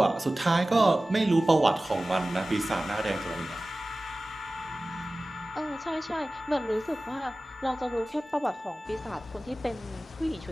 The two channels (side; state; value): both; normal; correlation 0.97